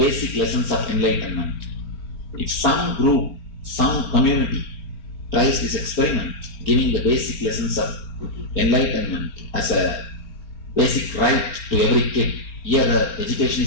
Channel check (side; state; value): right; late; 4.3 ms